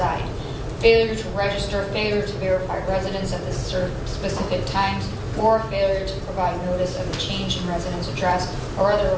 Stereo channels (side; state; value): both; identical; correlation 1.00